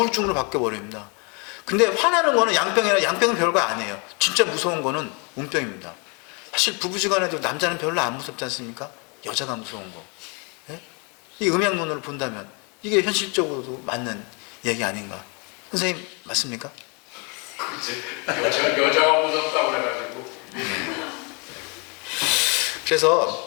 바뀌어버립니다. 근데 화나는 거는 양병은 별거 아니에요. 진짜 무서운 거는 운병입니다. 사실 부부지간에도 남자는 별로 안 무섭지 않습니까? 여자가 무서운 거. 예? 이 음양론으로 본다면 이게 현실적으로도 맞는 얘기 아닌가? 선생님 맞습니까? 그치. 여자가 무섭다고 그래가지고.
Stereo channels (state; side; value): quieter; right; 32.8 dB